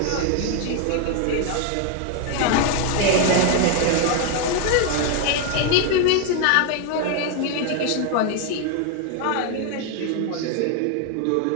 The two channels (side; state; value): both; different; correlation 0.00